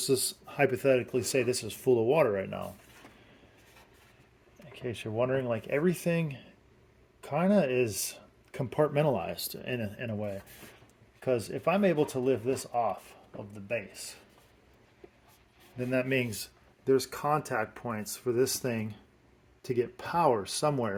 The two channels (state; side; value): identical; both; correlation 1.00